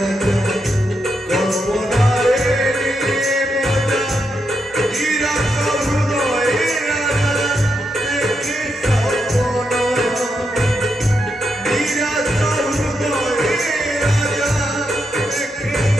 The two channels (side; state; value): both; normal; correlation 0.83